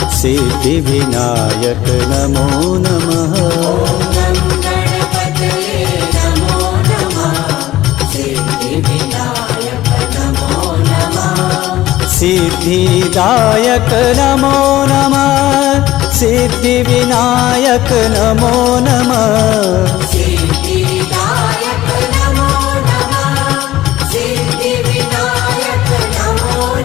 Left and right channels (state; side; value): quieter; right; 15.4 dB